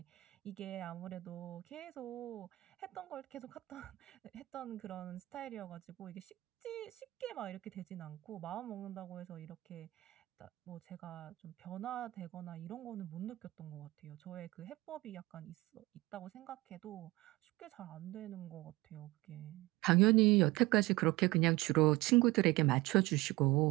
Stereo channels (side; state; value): left; quieter; 20.1 dB